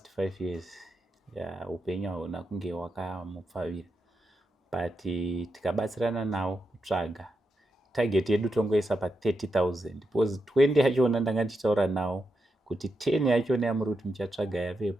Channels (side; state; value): both; normal; correlation 0.86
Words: 5 years upenyu hauna kunge wakamupfavira, but tikabatsirana nawo kutsvaga target yedu tongoisa pa30,000 because 20 yachona ndanga ndichitaura nawo kuti 10 yachona yamuri kuti muchatsvaga